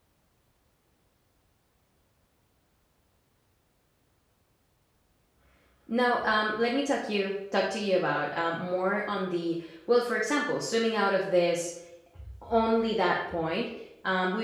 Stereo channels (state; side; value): identical; both; correlation 1.00